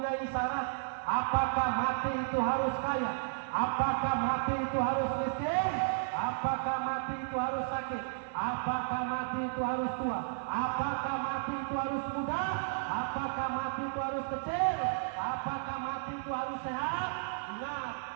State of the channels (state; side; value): silent; left; digital silence